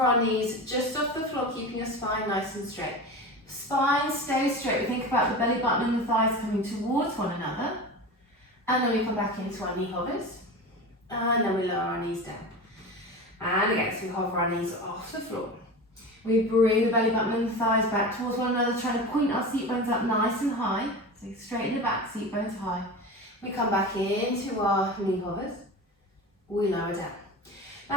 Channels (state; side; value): normal; both; correlation 0.29